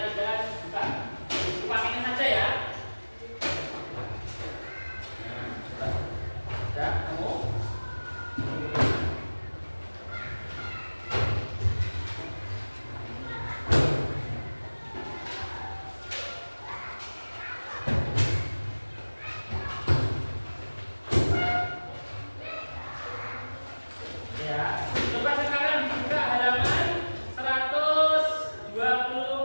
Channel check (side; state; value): both; inverted; correlation -1.00